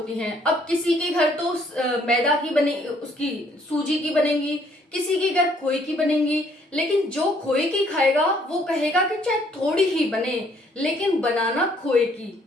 हैं। अब किसी के घर तो मैदा की बने, उसकी सूजी की बनेगी, किसी के घर खोए की बनेगी। लेकिन जो खोए की खाएगा वो कहेगा कि चाहे थोड़ी ही बने लेकिन बनाना खोए की,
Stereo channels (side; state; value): both; normal; correlation 0.64